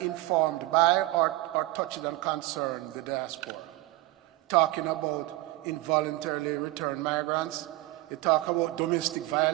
informed by or touched on concern the diaspora. Talking about involuntarily returned migrants, you talk about domestic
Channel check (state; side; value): quieter; left; 18.7 dB